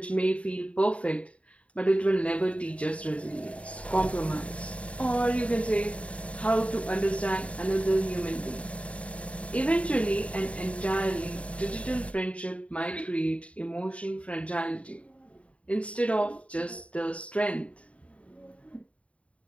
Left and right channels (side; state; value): right; late; 0.064 ms